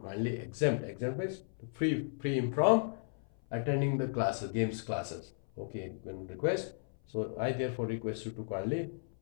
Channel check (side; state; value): right; silent; 55 dB below the other